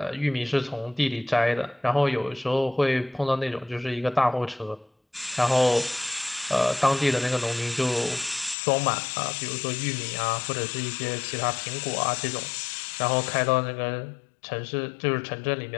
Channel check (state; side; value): drops out; right; at 8.6 s